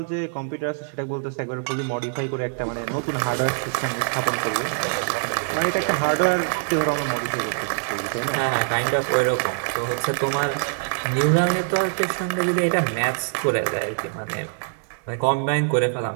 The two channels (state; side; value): silent; left; 63 dB below the other